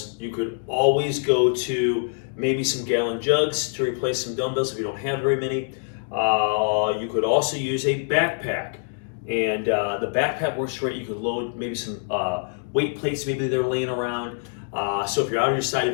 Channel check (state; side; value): silent; right; digital silence